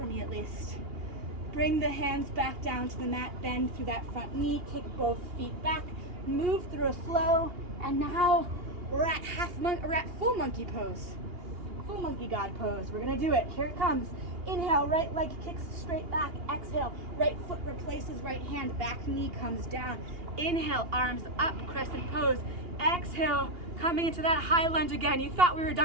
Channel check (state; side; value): late; left; 2.8 ms